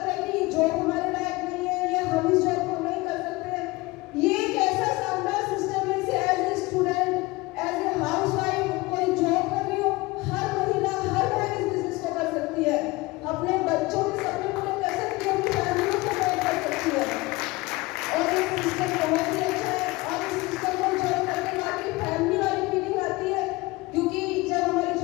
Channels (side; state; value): right; quieter; 22.0 dB